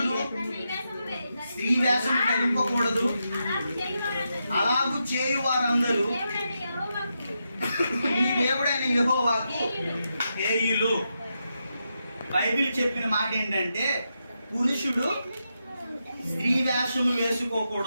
స్త్రీ వేషం ధరింపకూడదు, అలాగూ చేయు వారందరూ నీ దేవుడైన యెహోవాకు హేయులు. బైబిల్ చెప్పిన మాట ఏంటంటే పురుషుడు స్త్రీ వేషము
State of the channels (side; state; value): both; inverted; correlation -0.86